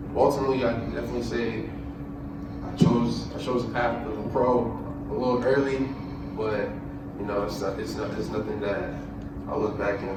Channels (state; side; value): identical; both; correlation 1.00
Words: Ultimately, I definitely say I chose a path of a pro a little early, but it's nothing that I look back